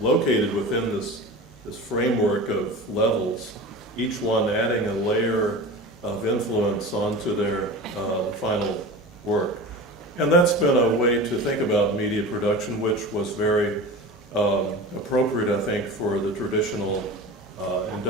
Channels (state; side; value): normal; both; correlation 0.32